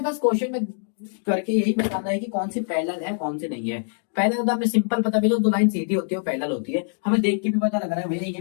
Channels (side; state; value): right; silent; digital silence